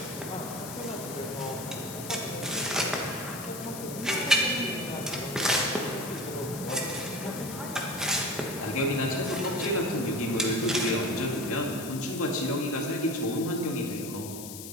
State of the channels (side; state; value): left; noise; hiss, 10 dB below the sound